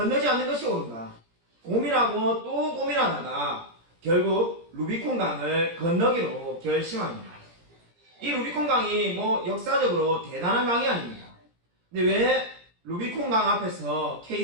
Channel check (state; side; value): late; left; 17 ms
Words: 않는 것이 옳은가? 고민하고 또 고민하다가 결국 루비콘 강을 건너기로 결심합니다. 이 루비콘 강이 역사적으로 대단한 강이 아닙니다. 근데 왜 루비콘 강 앞에서